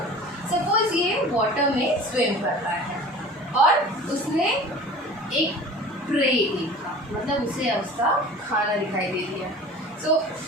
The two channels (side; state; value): both; normal; correlation 0.41